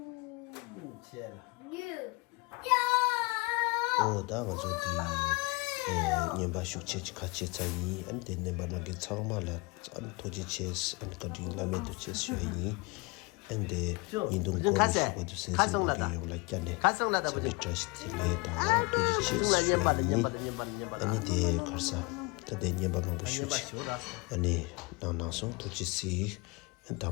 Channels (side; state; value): right; quieter; 26.9 dB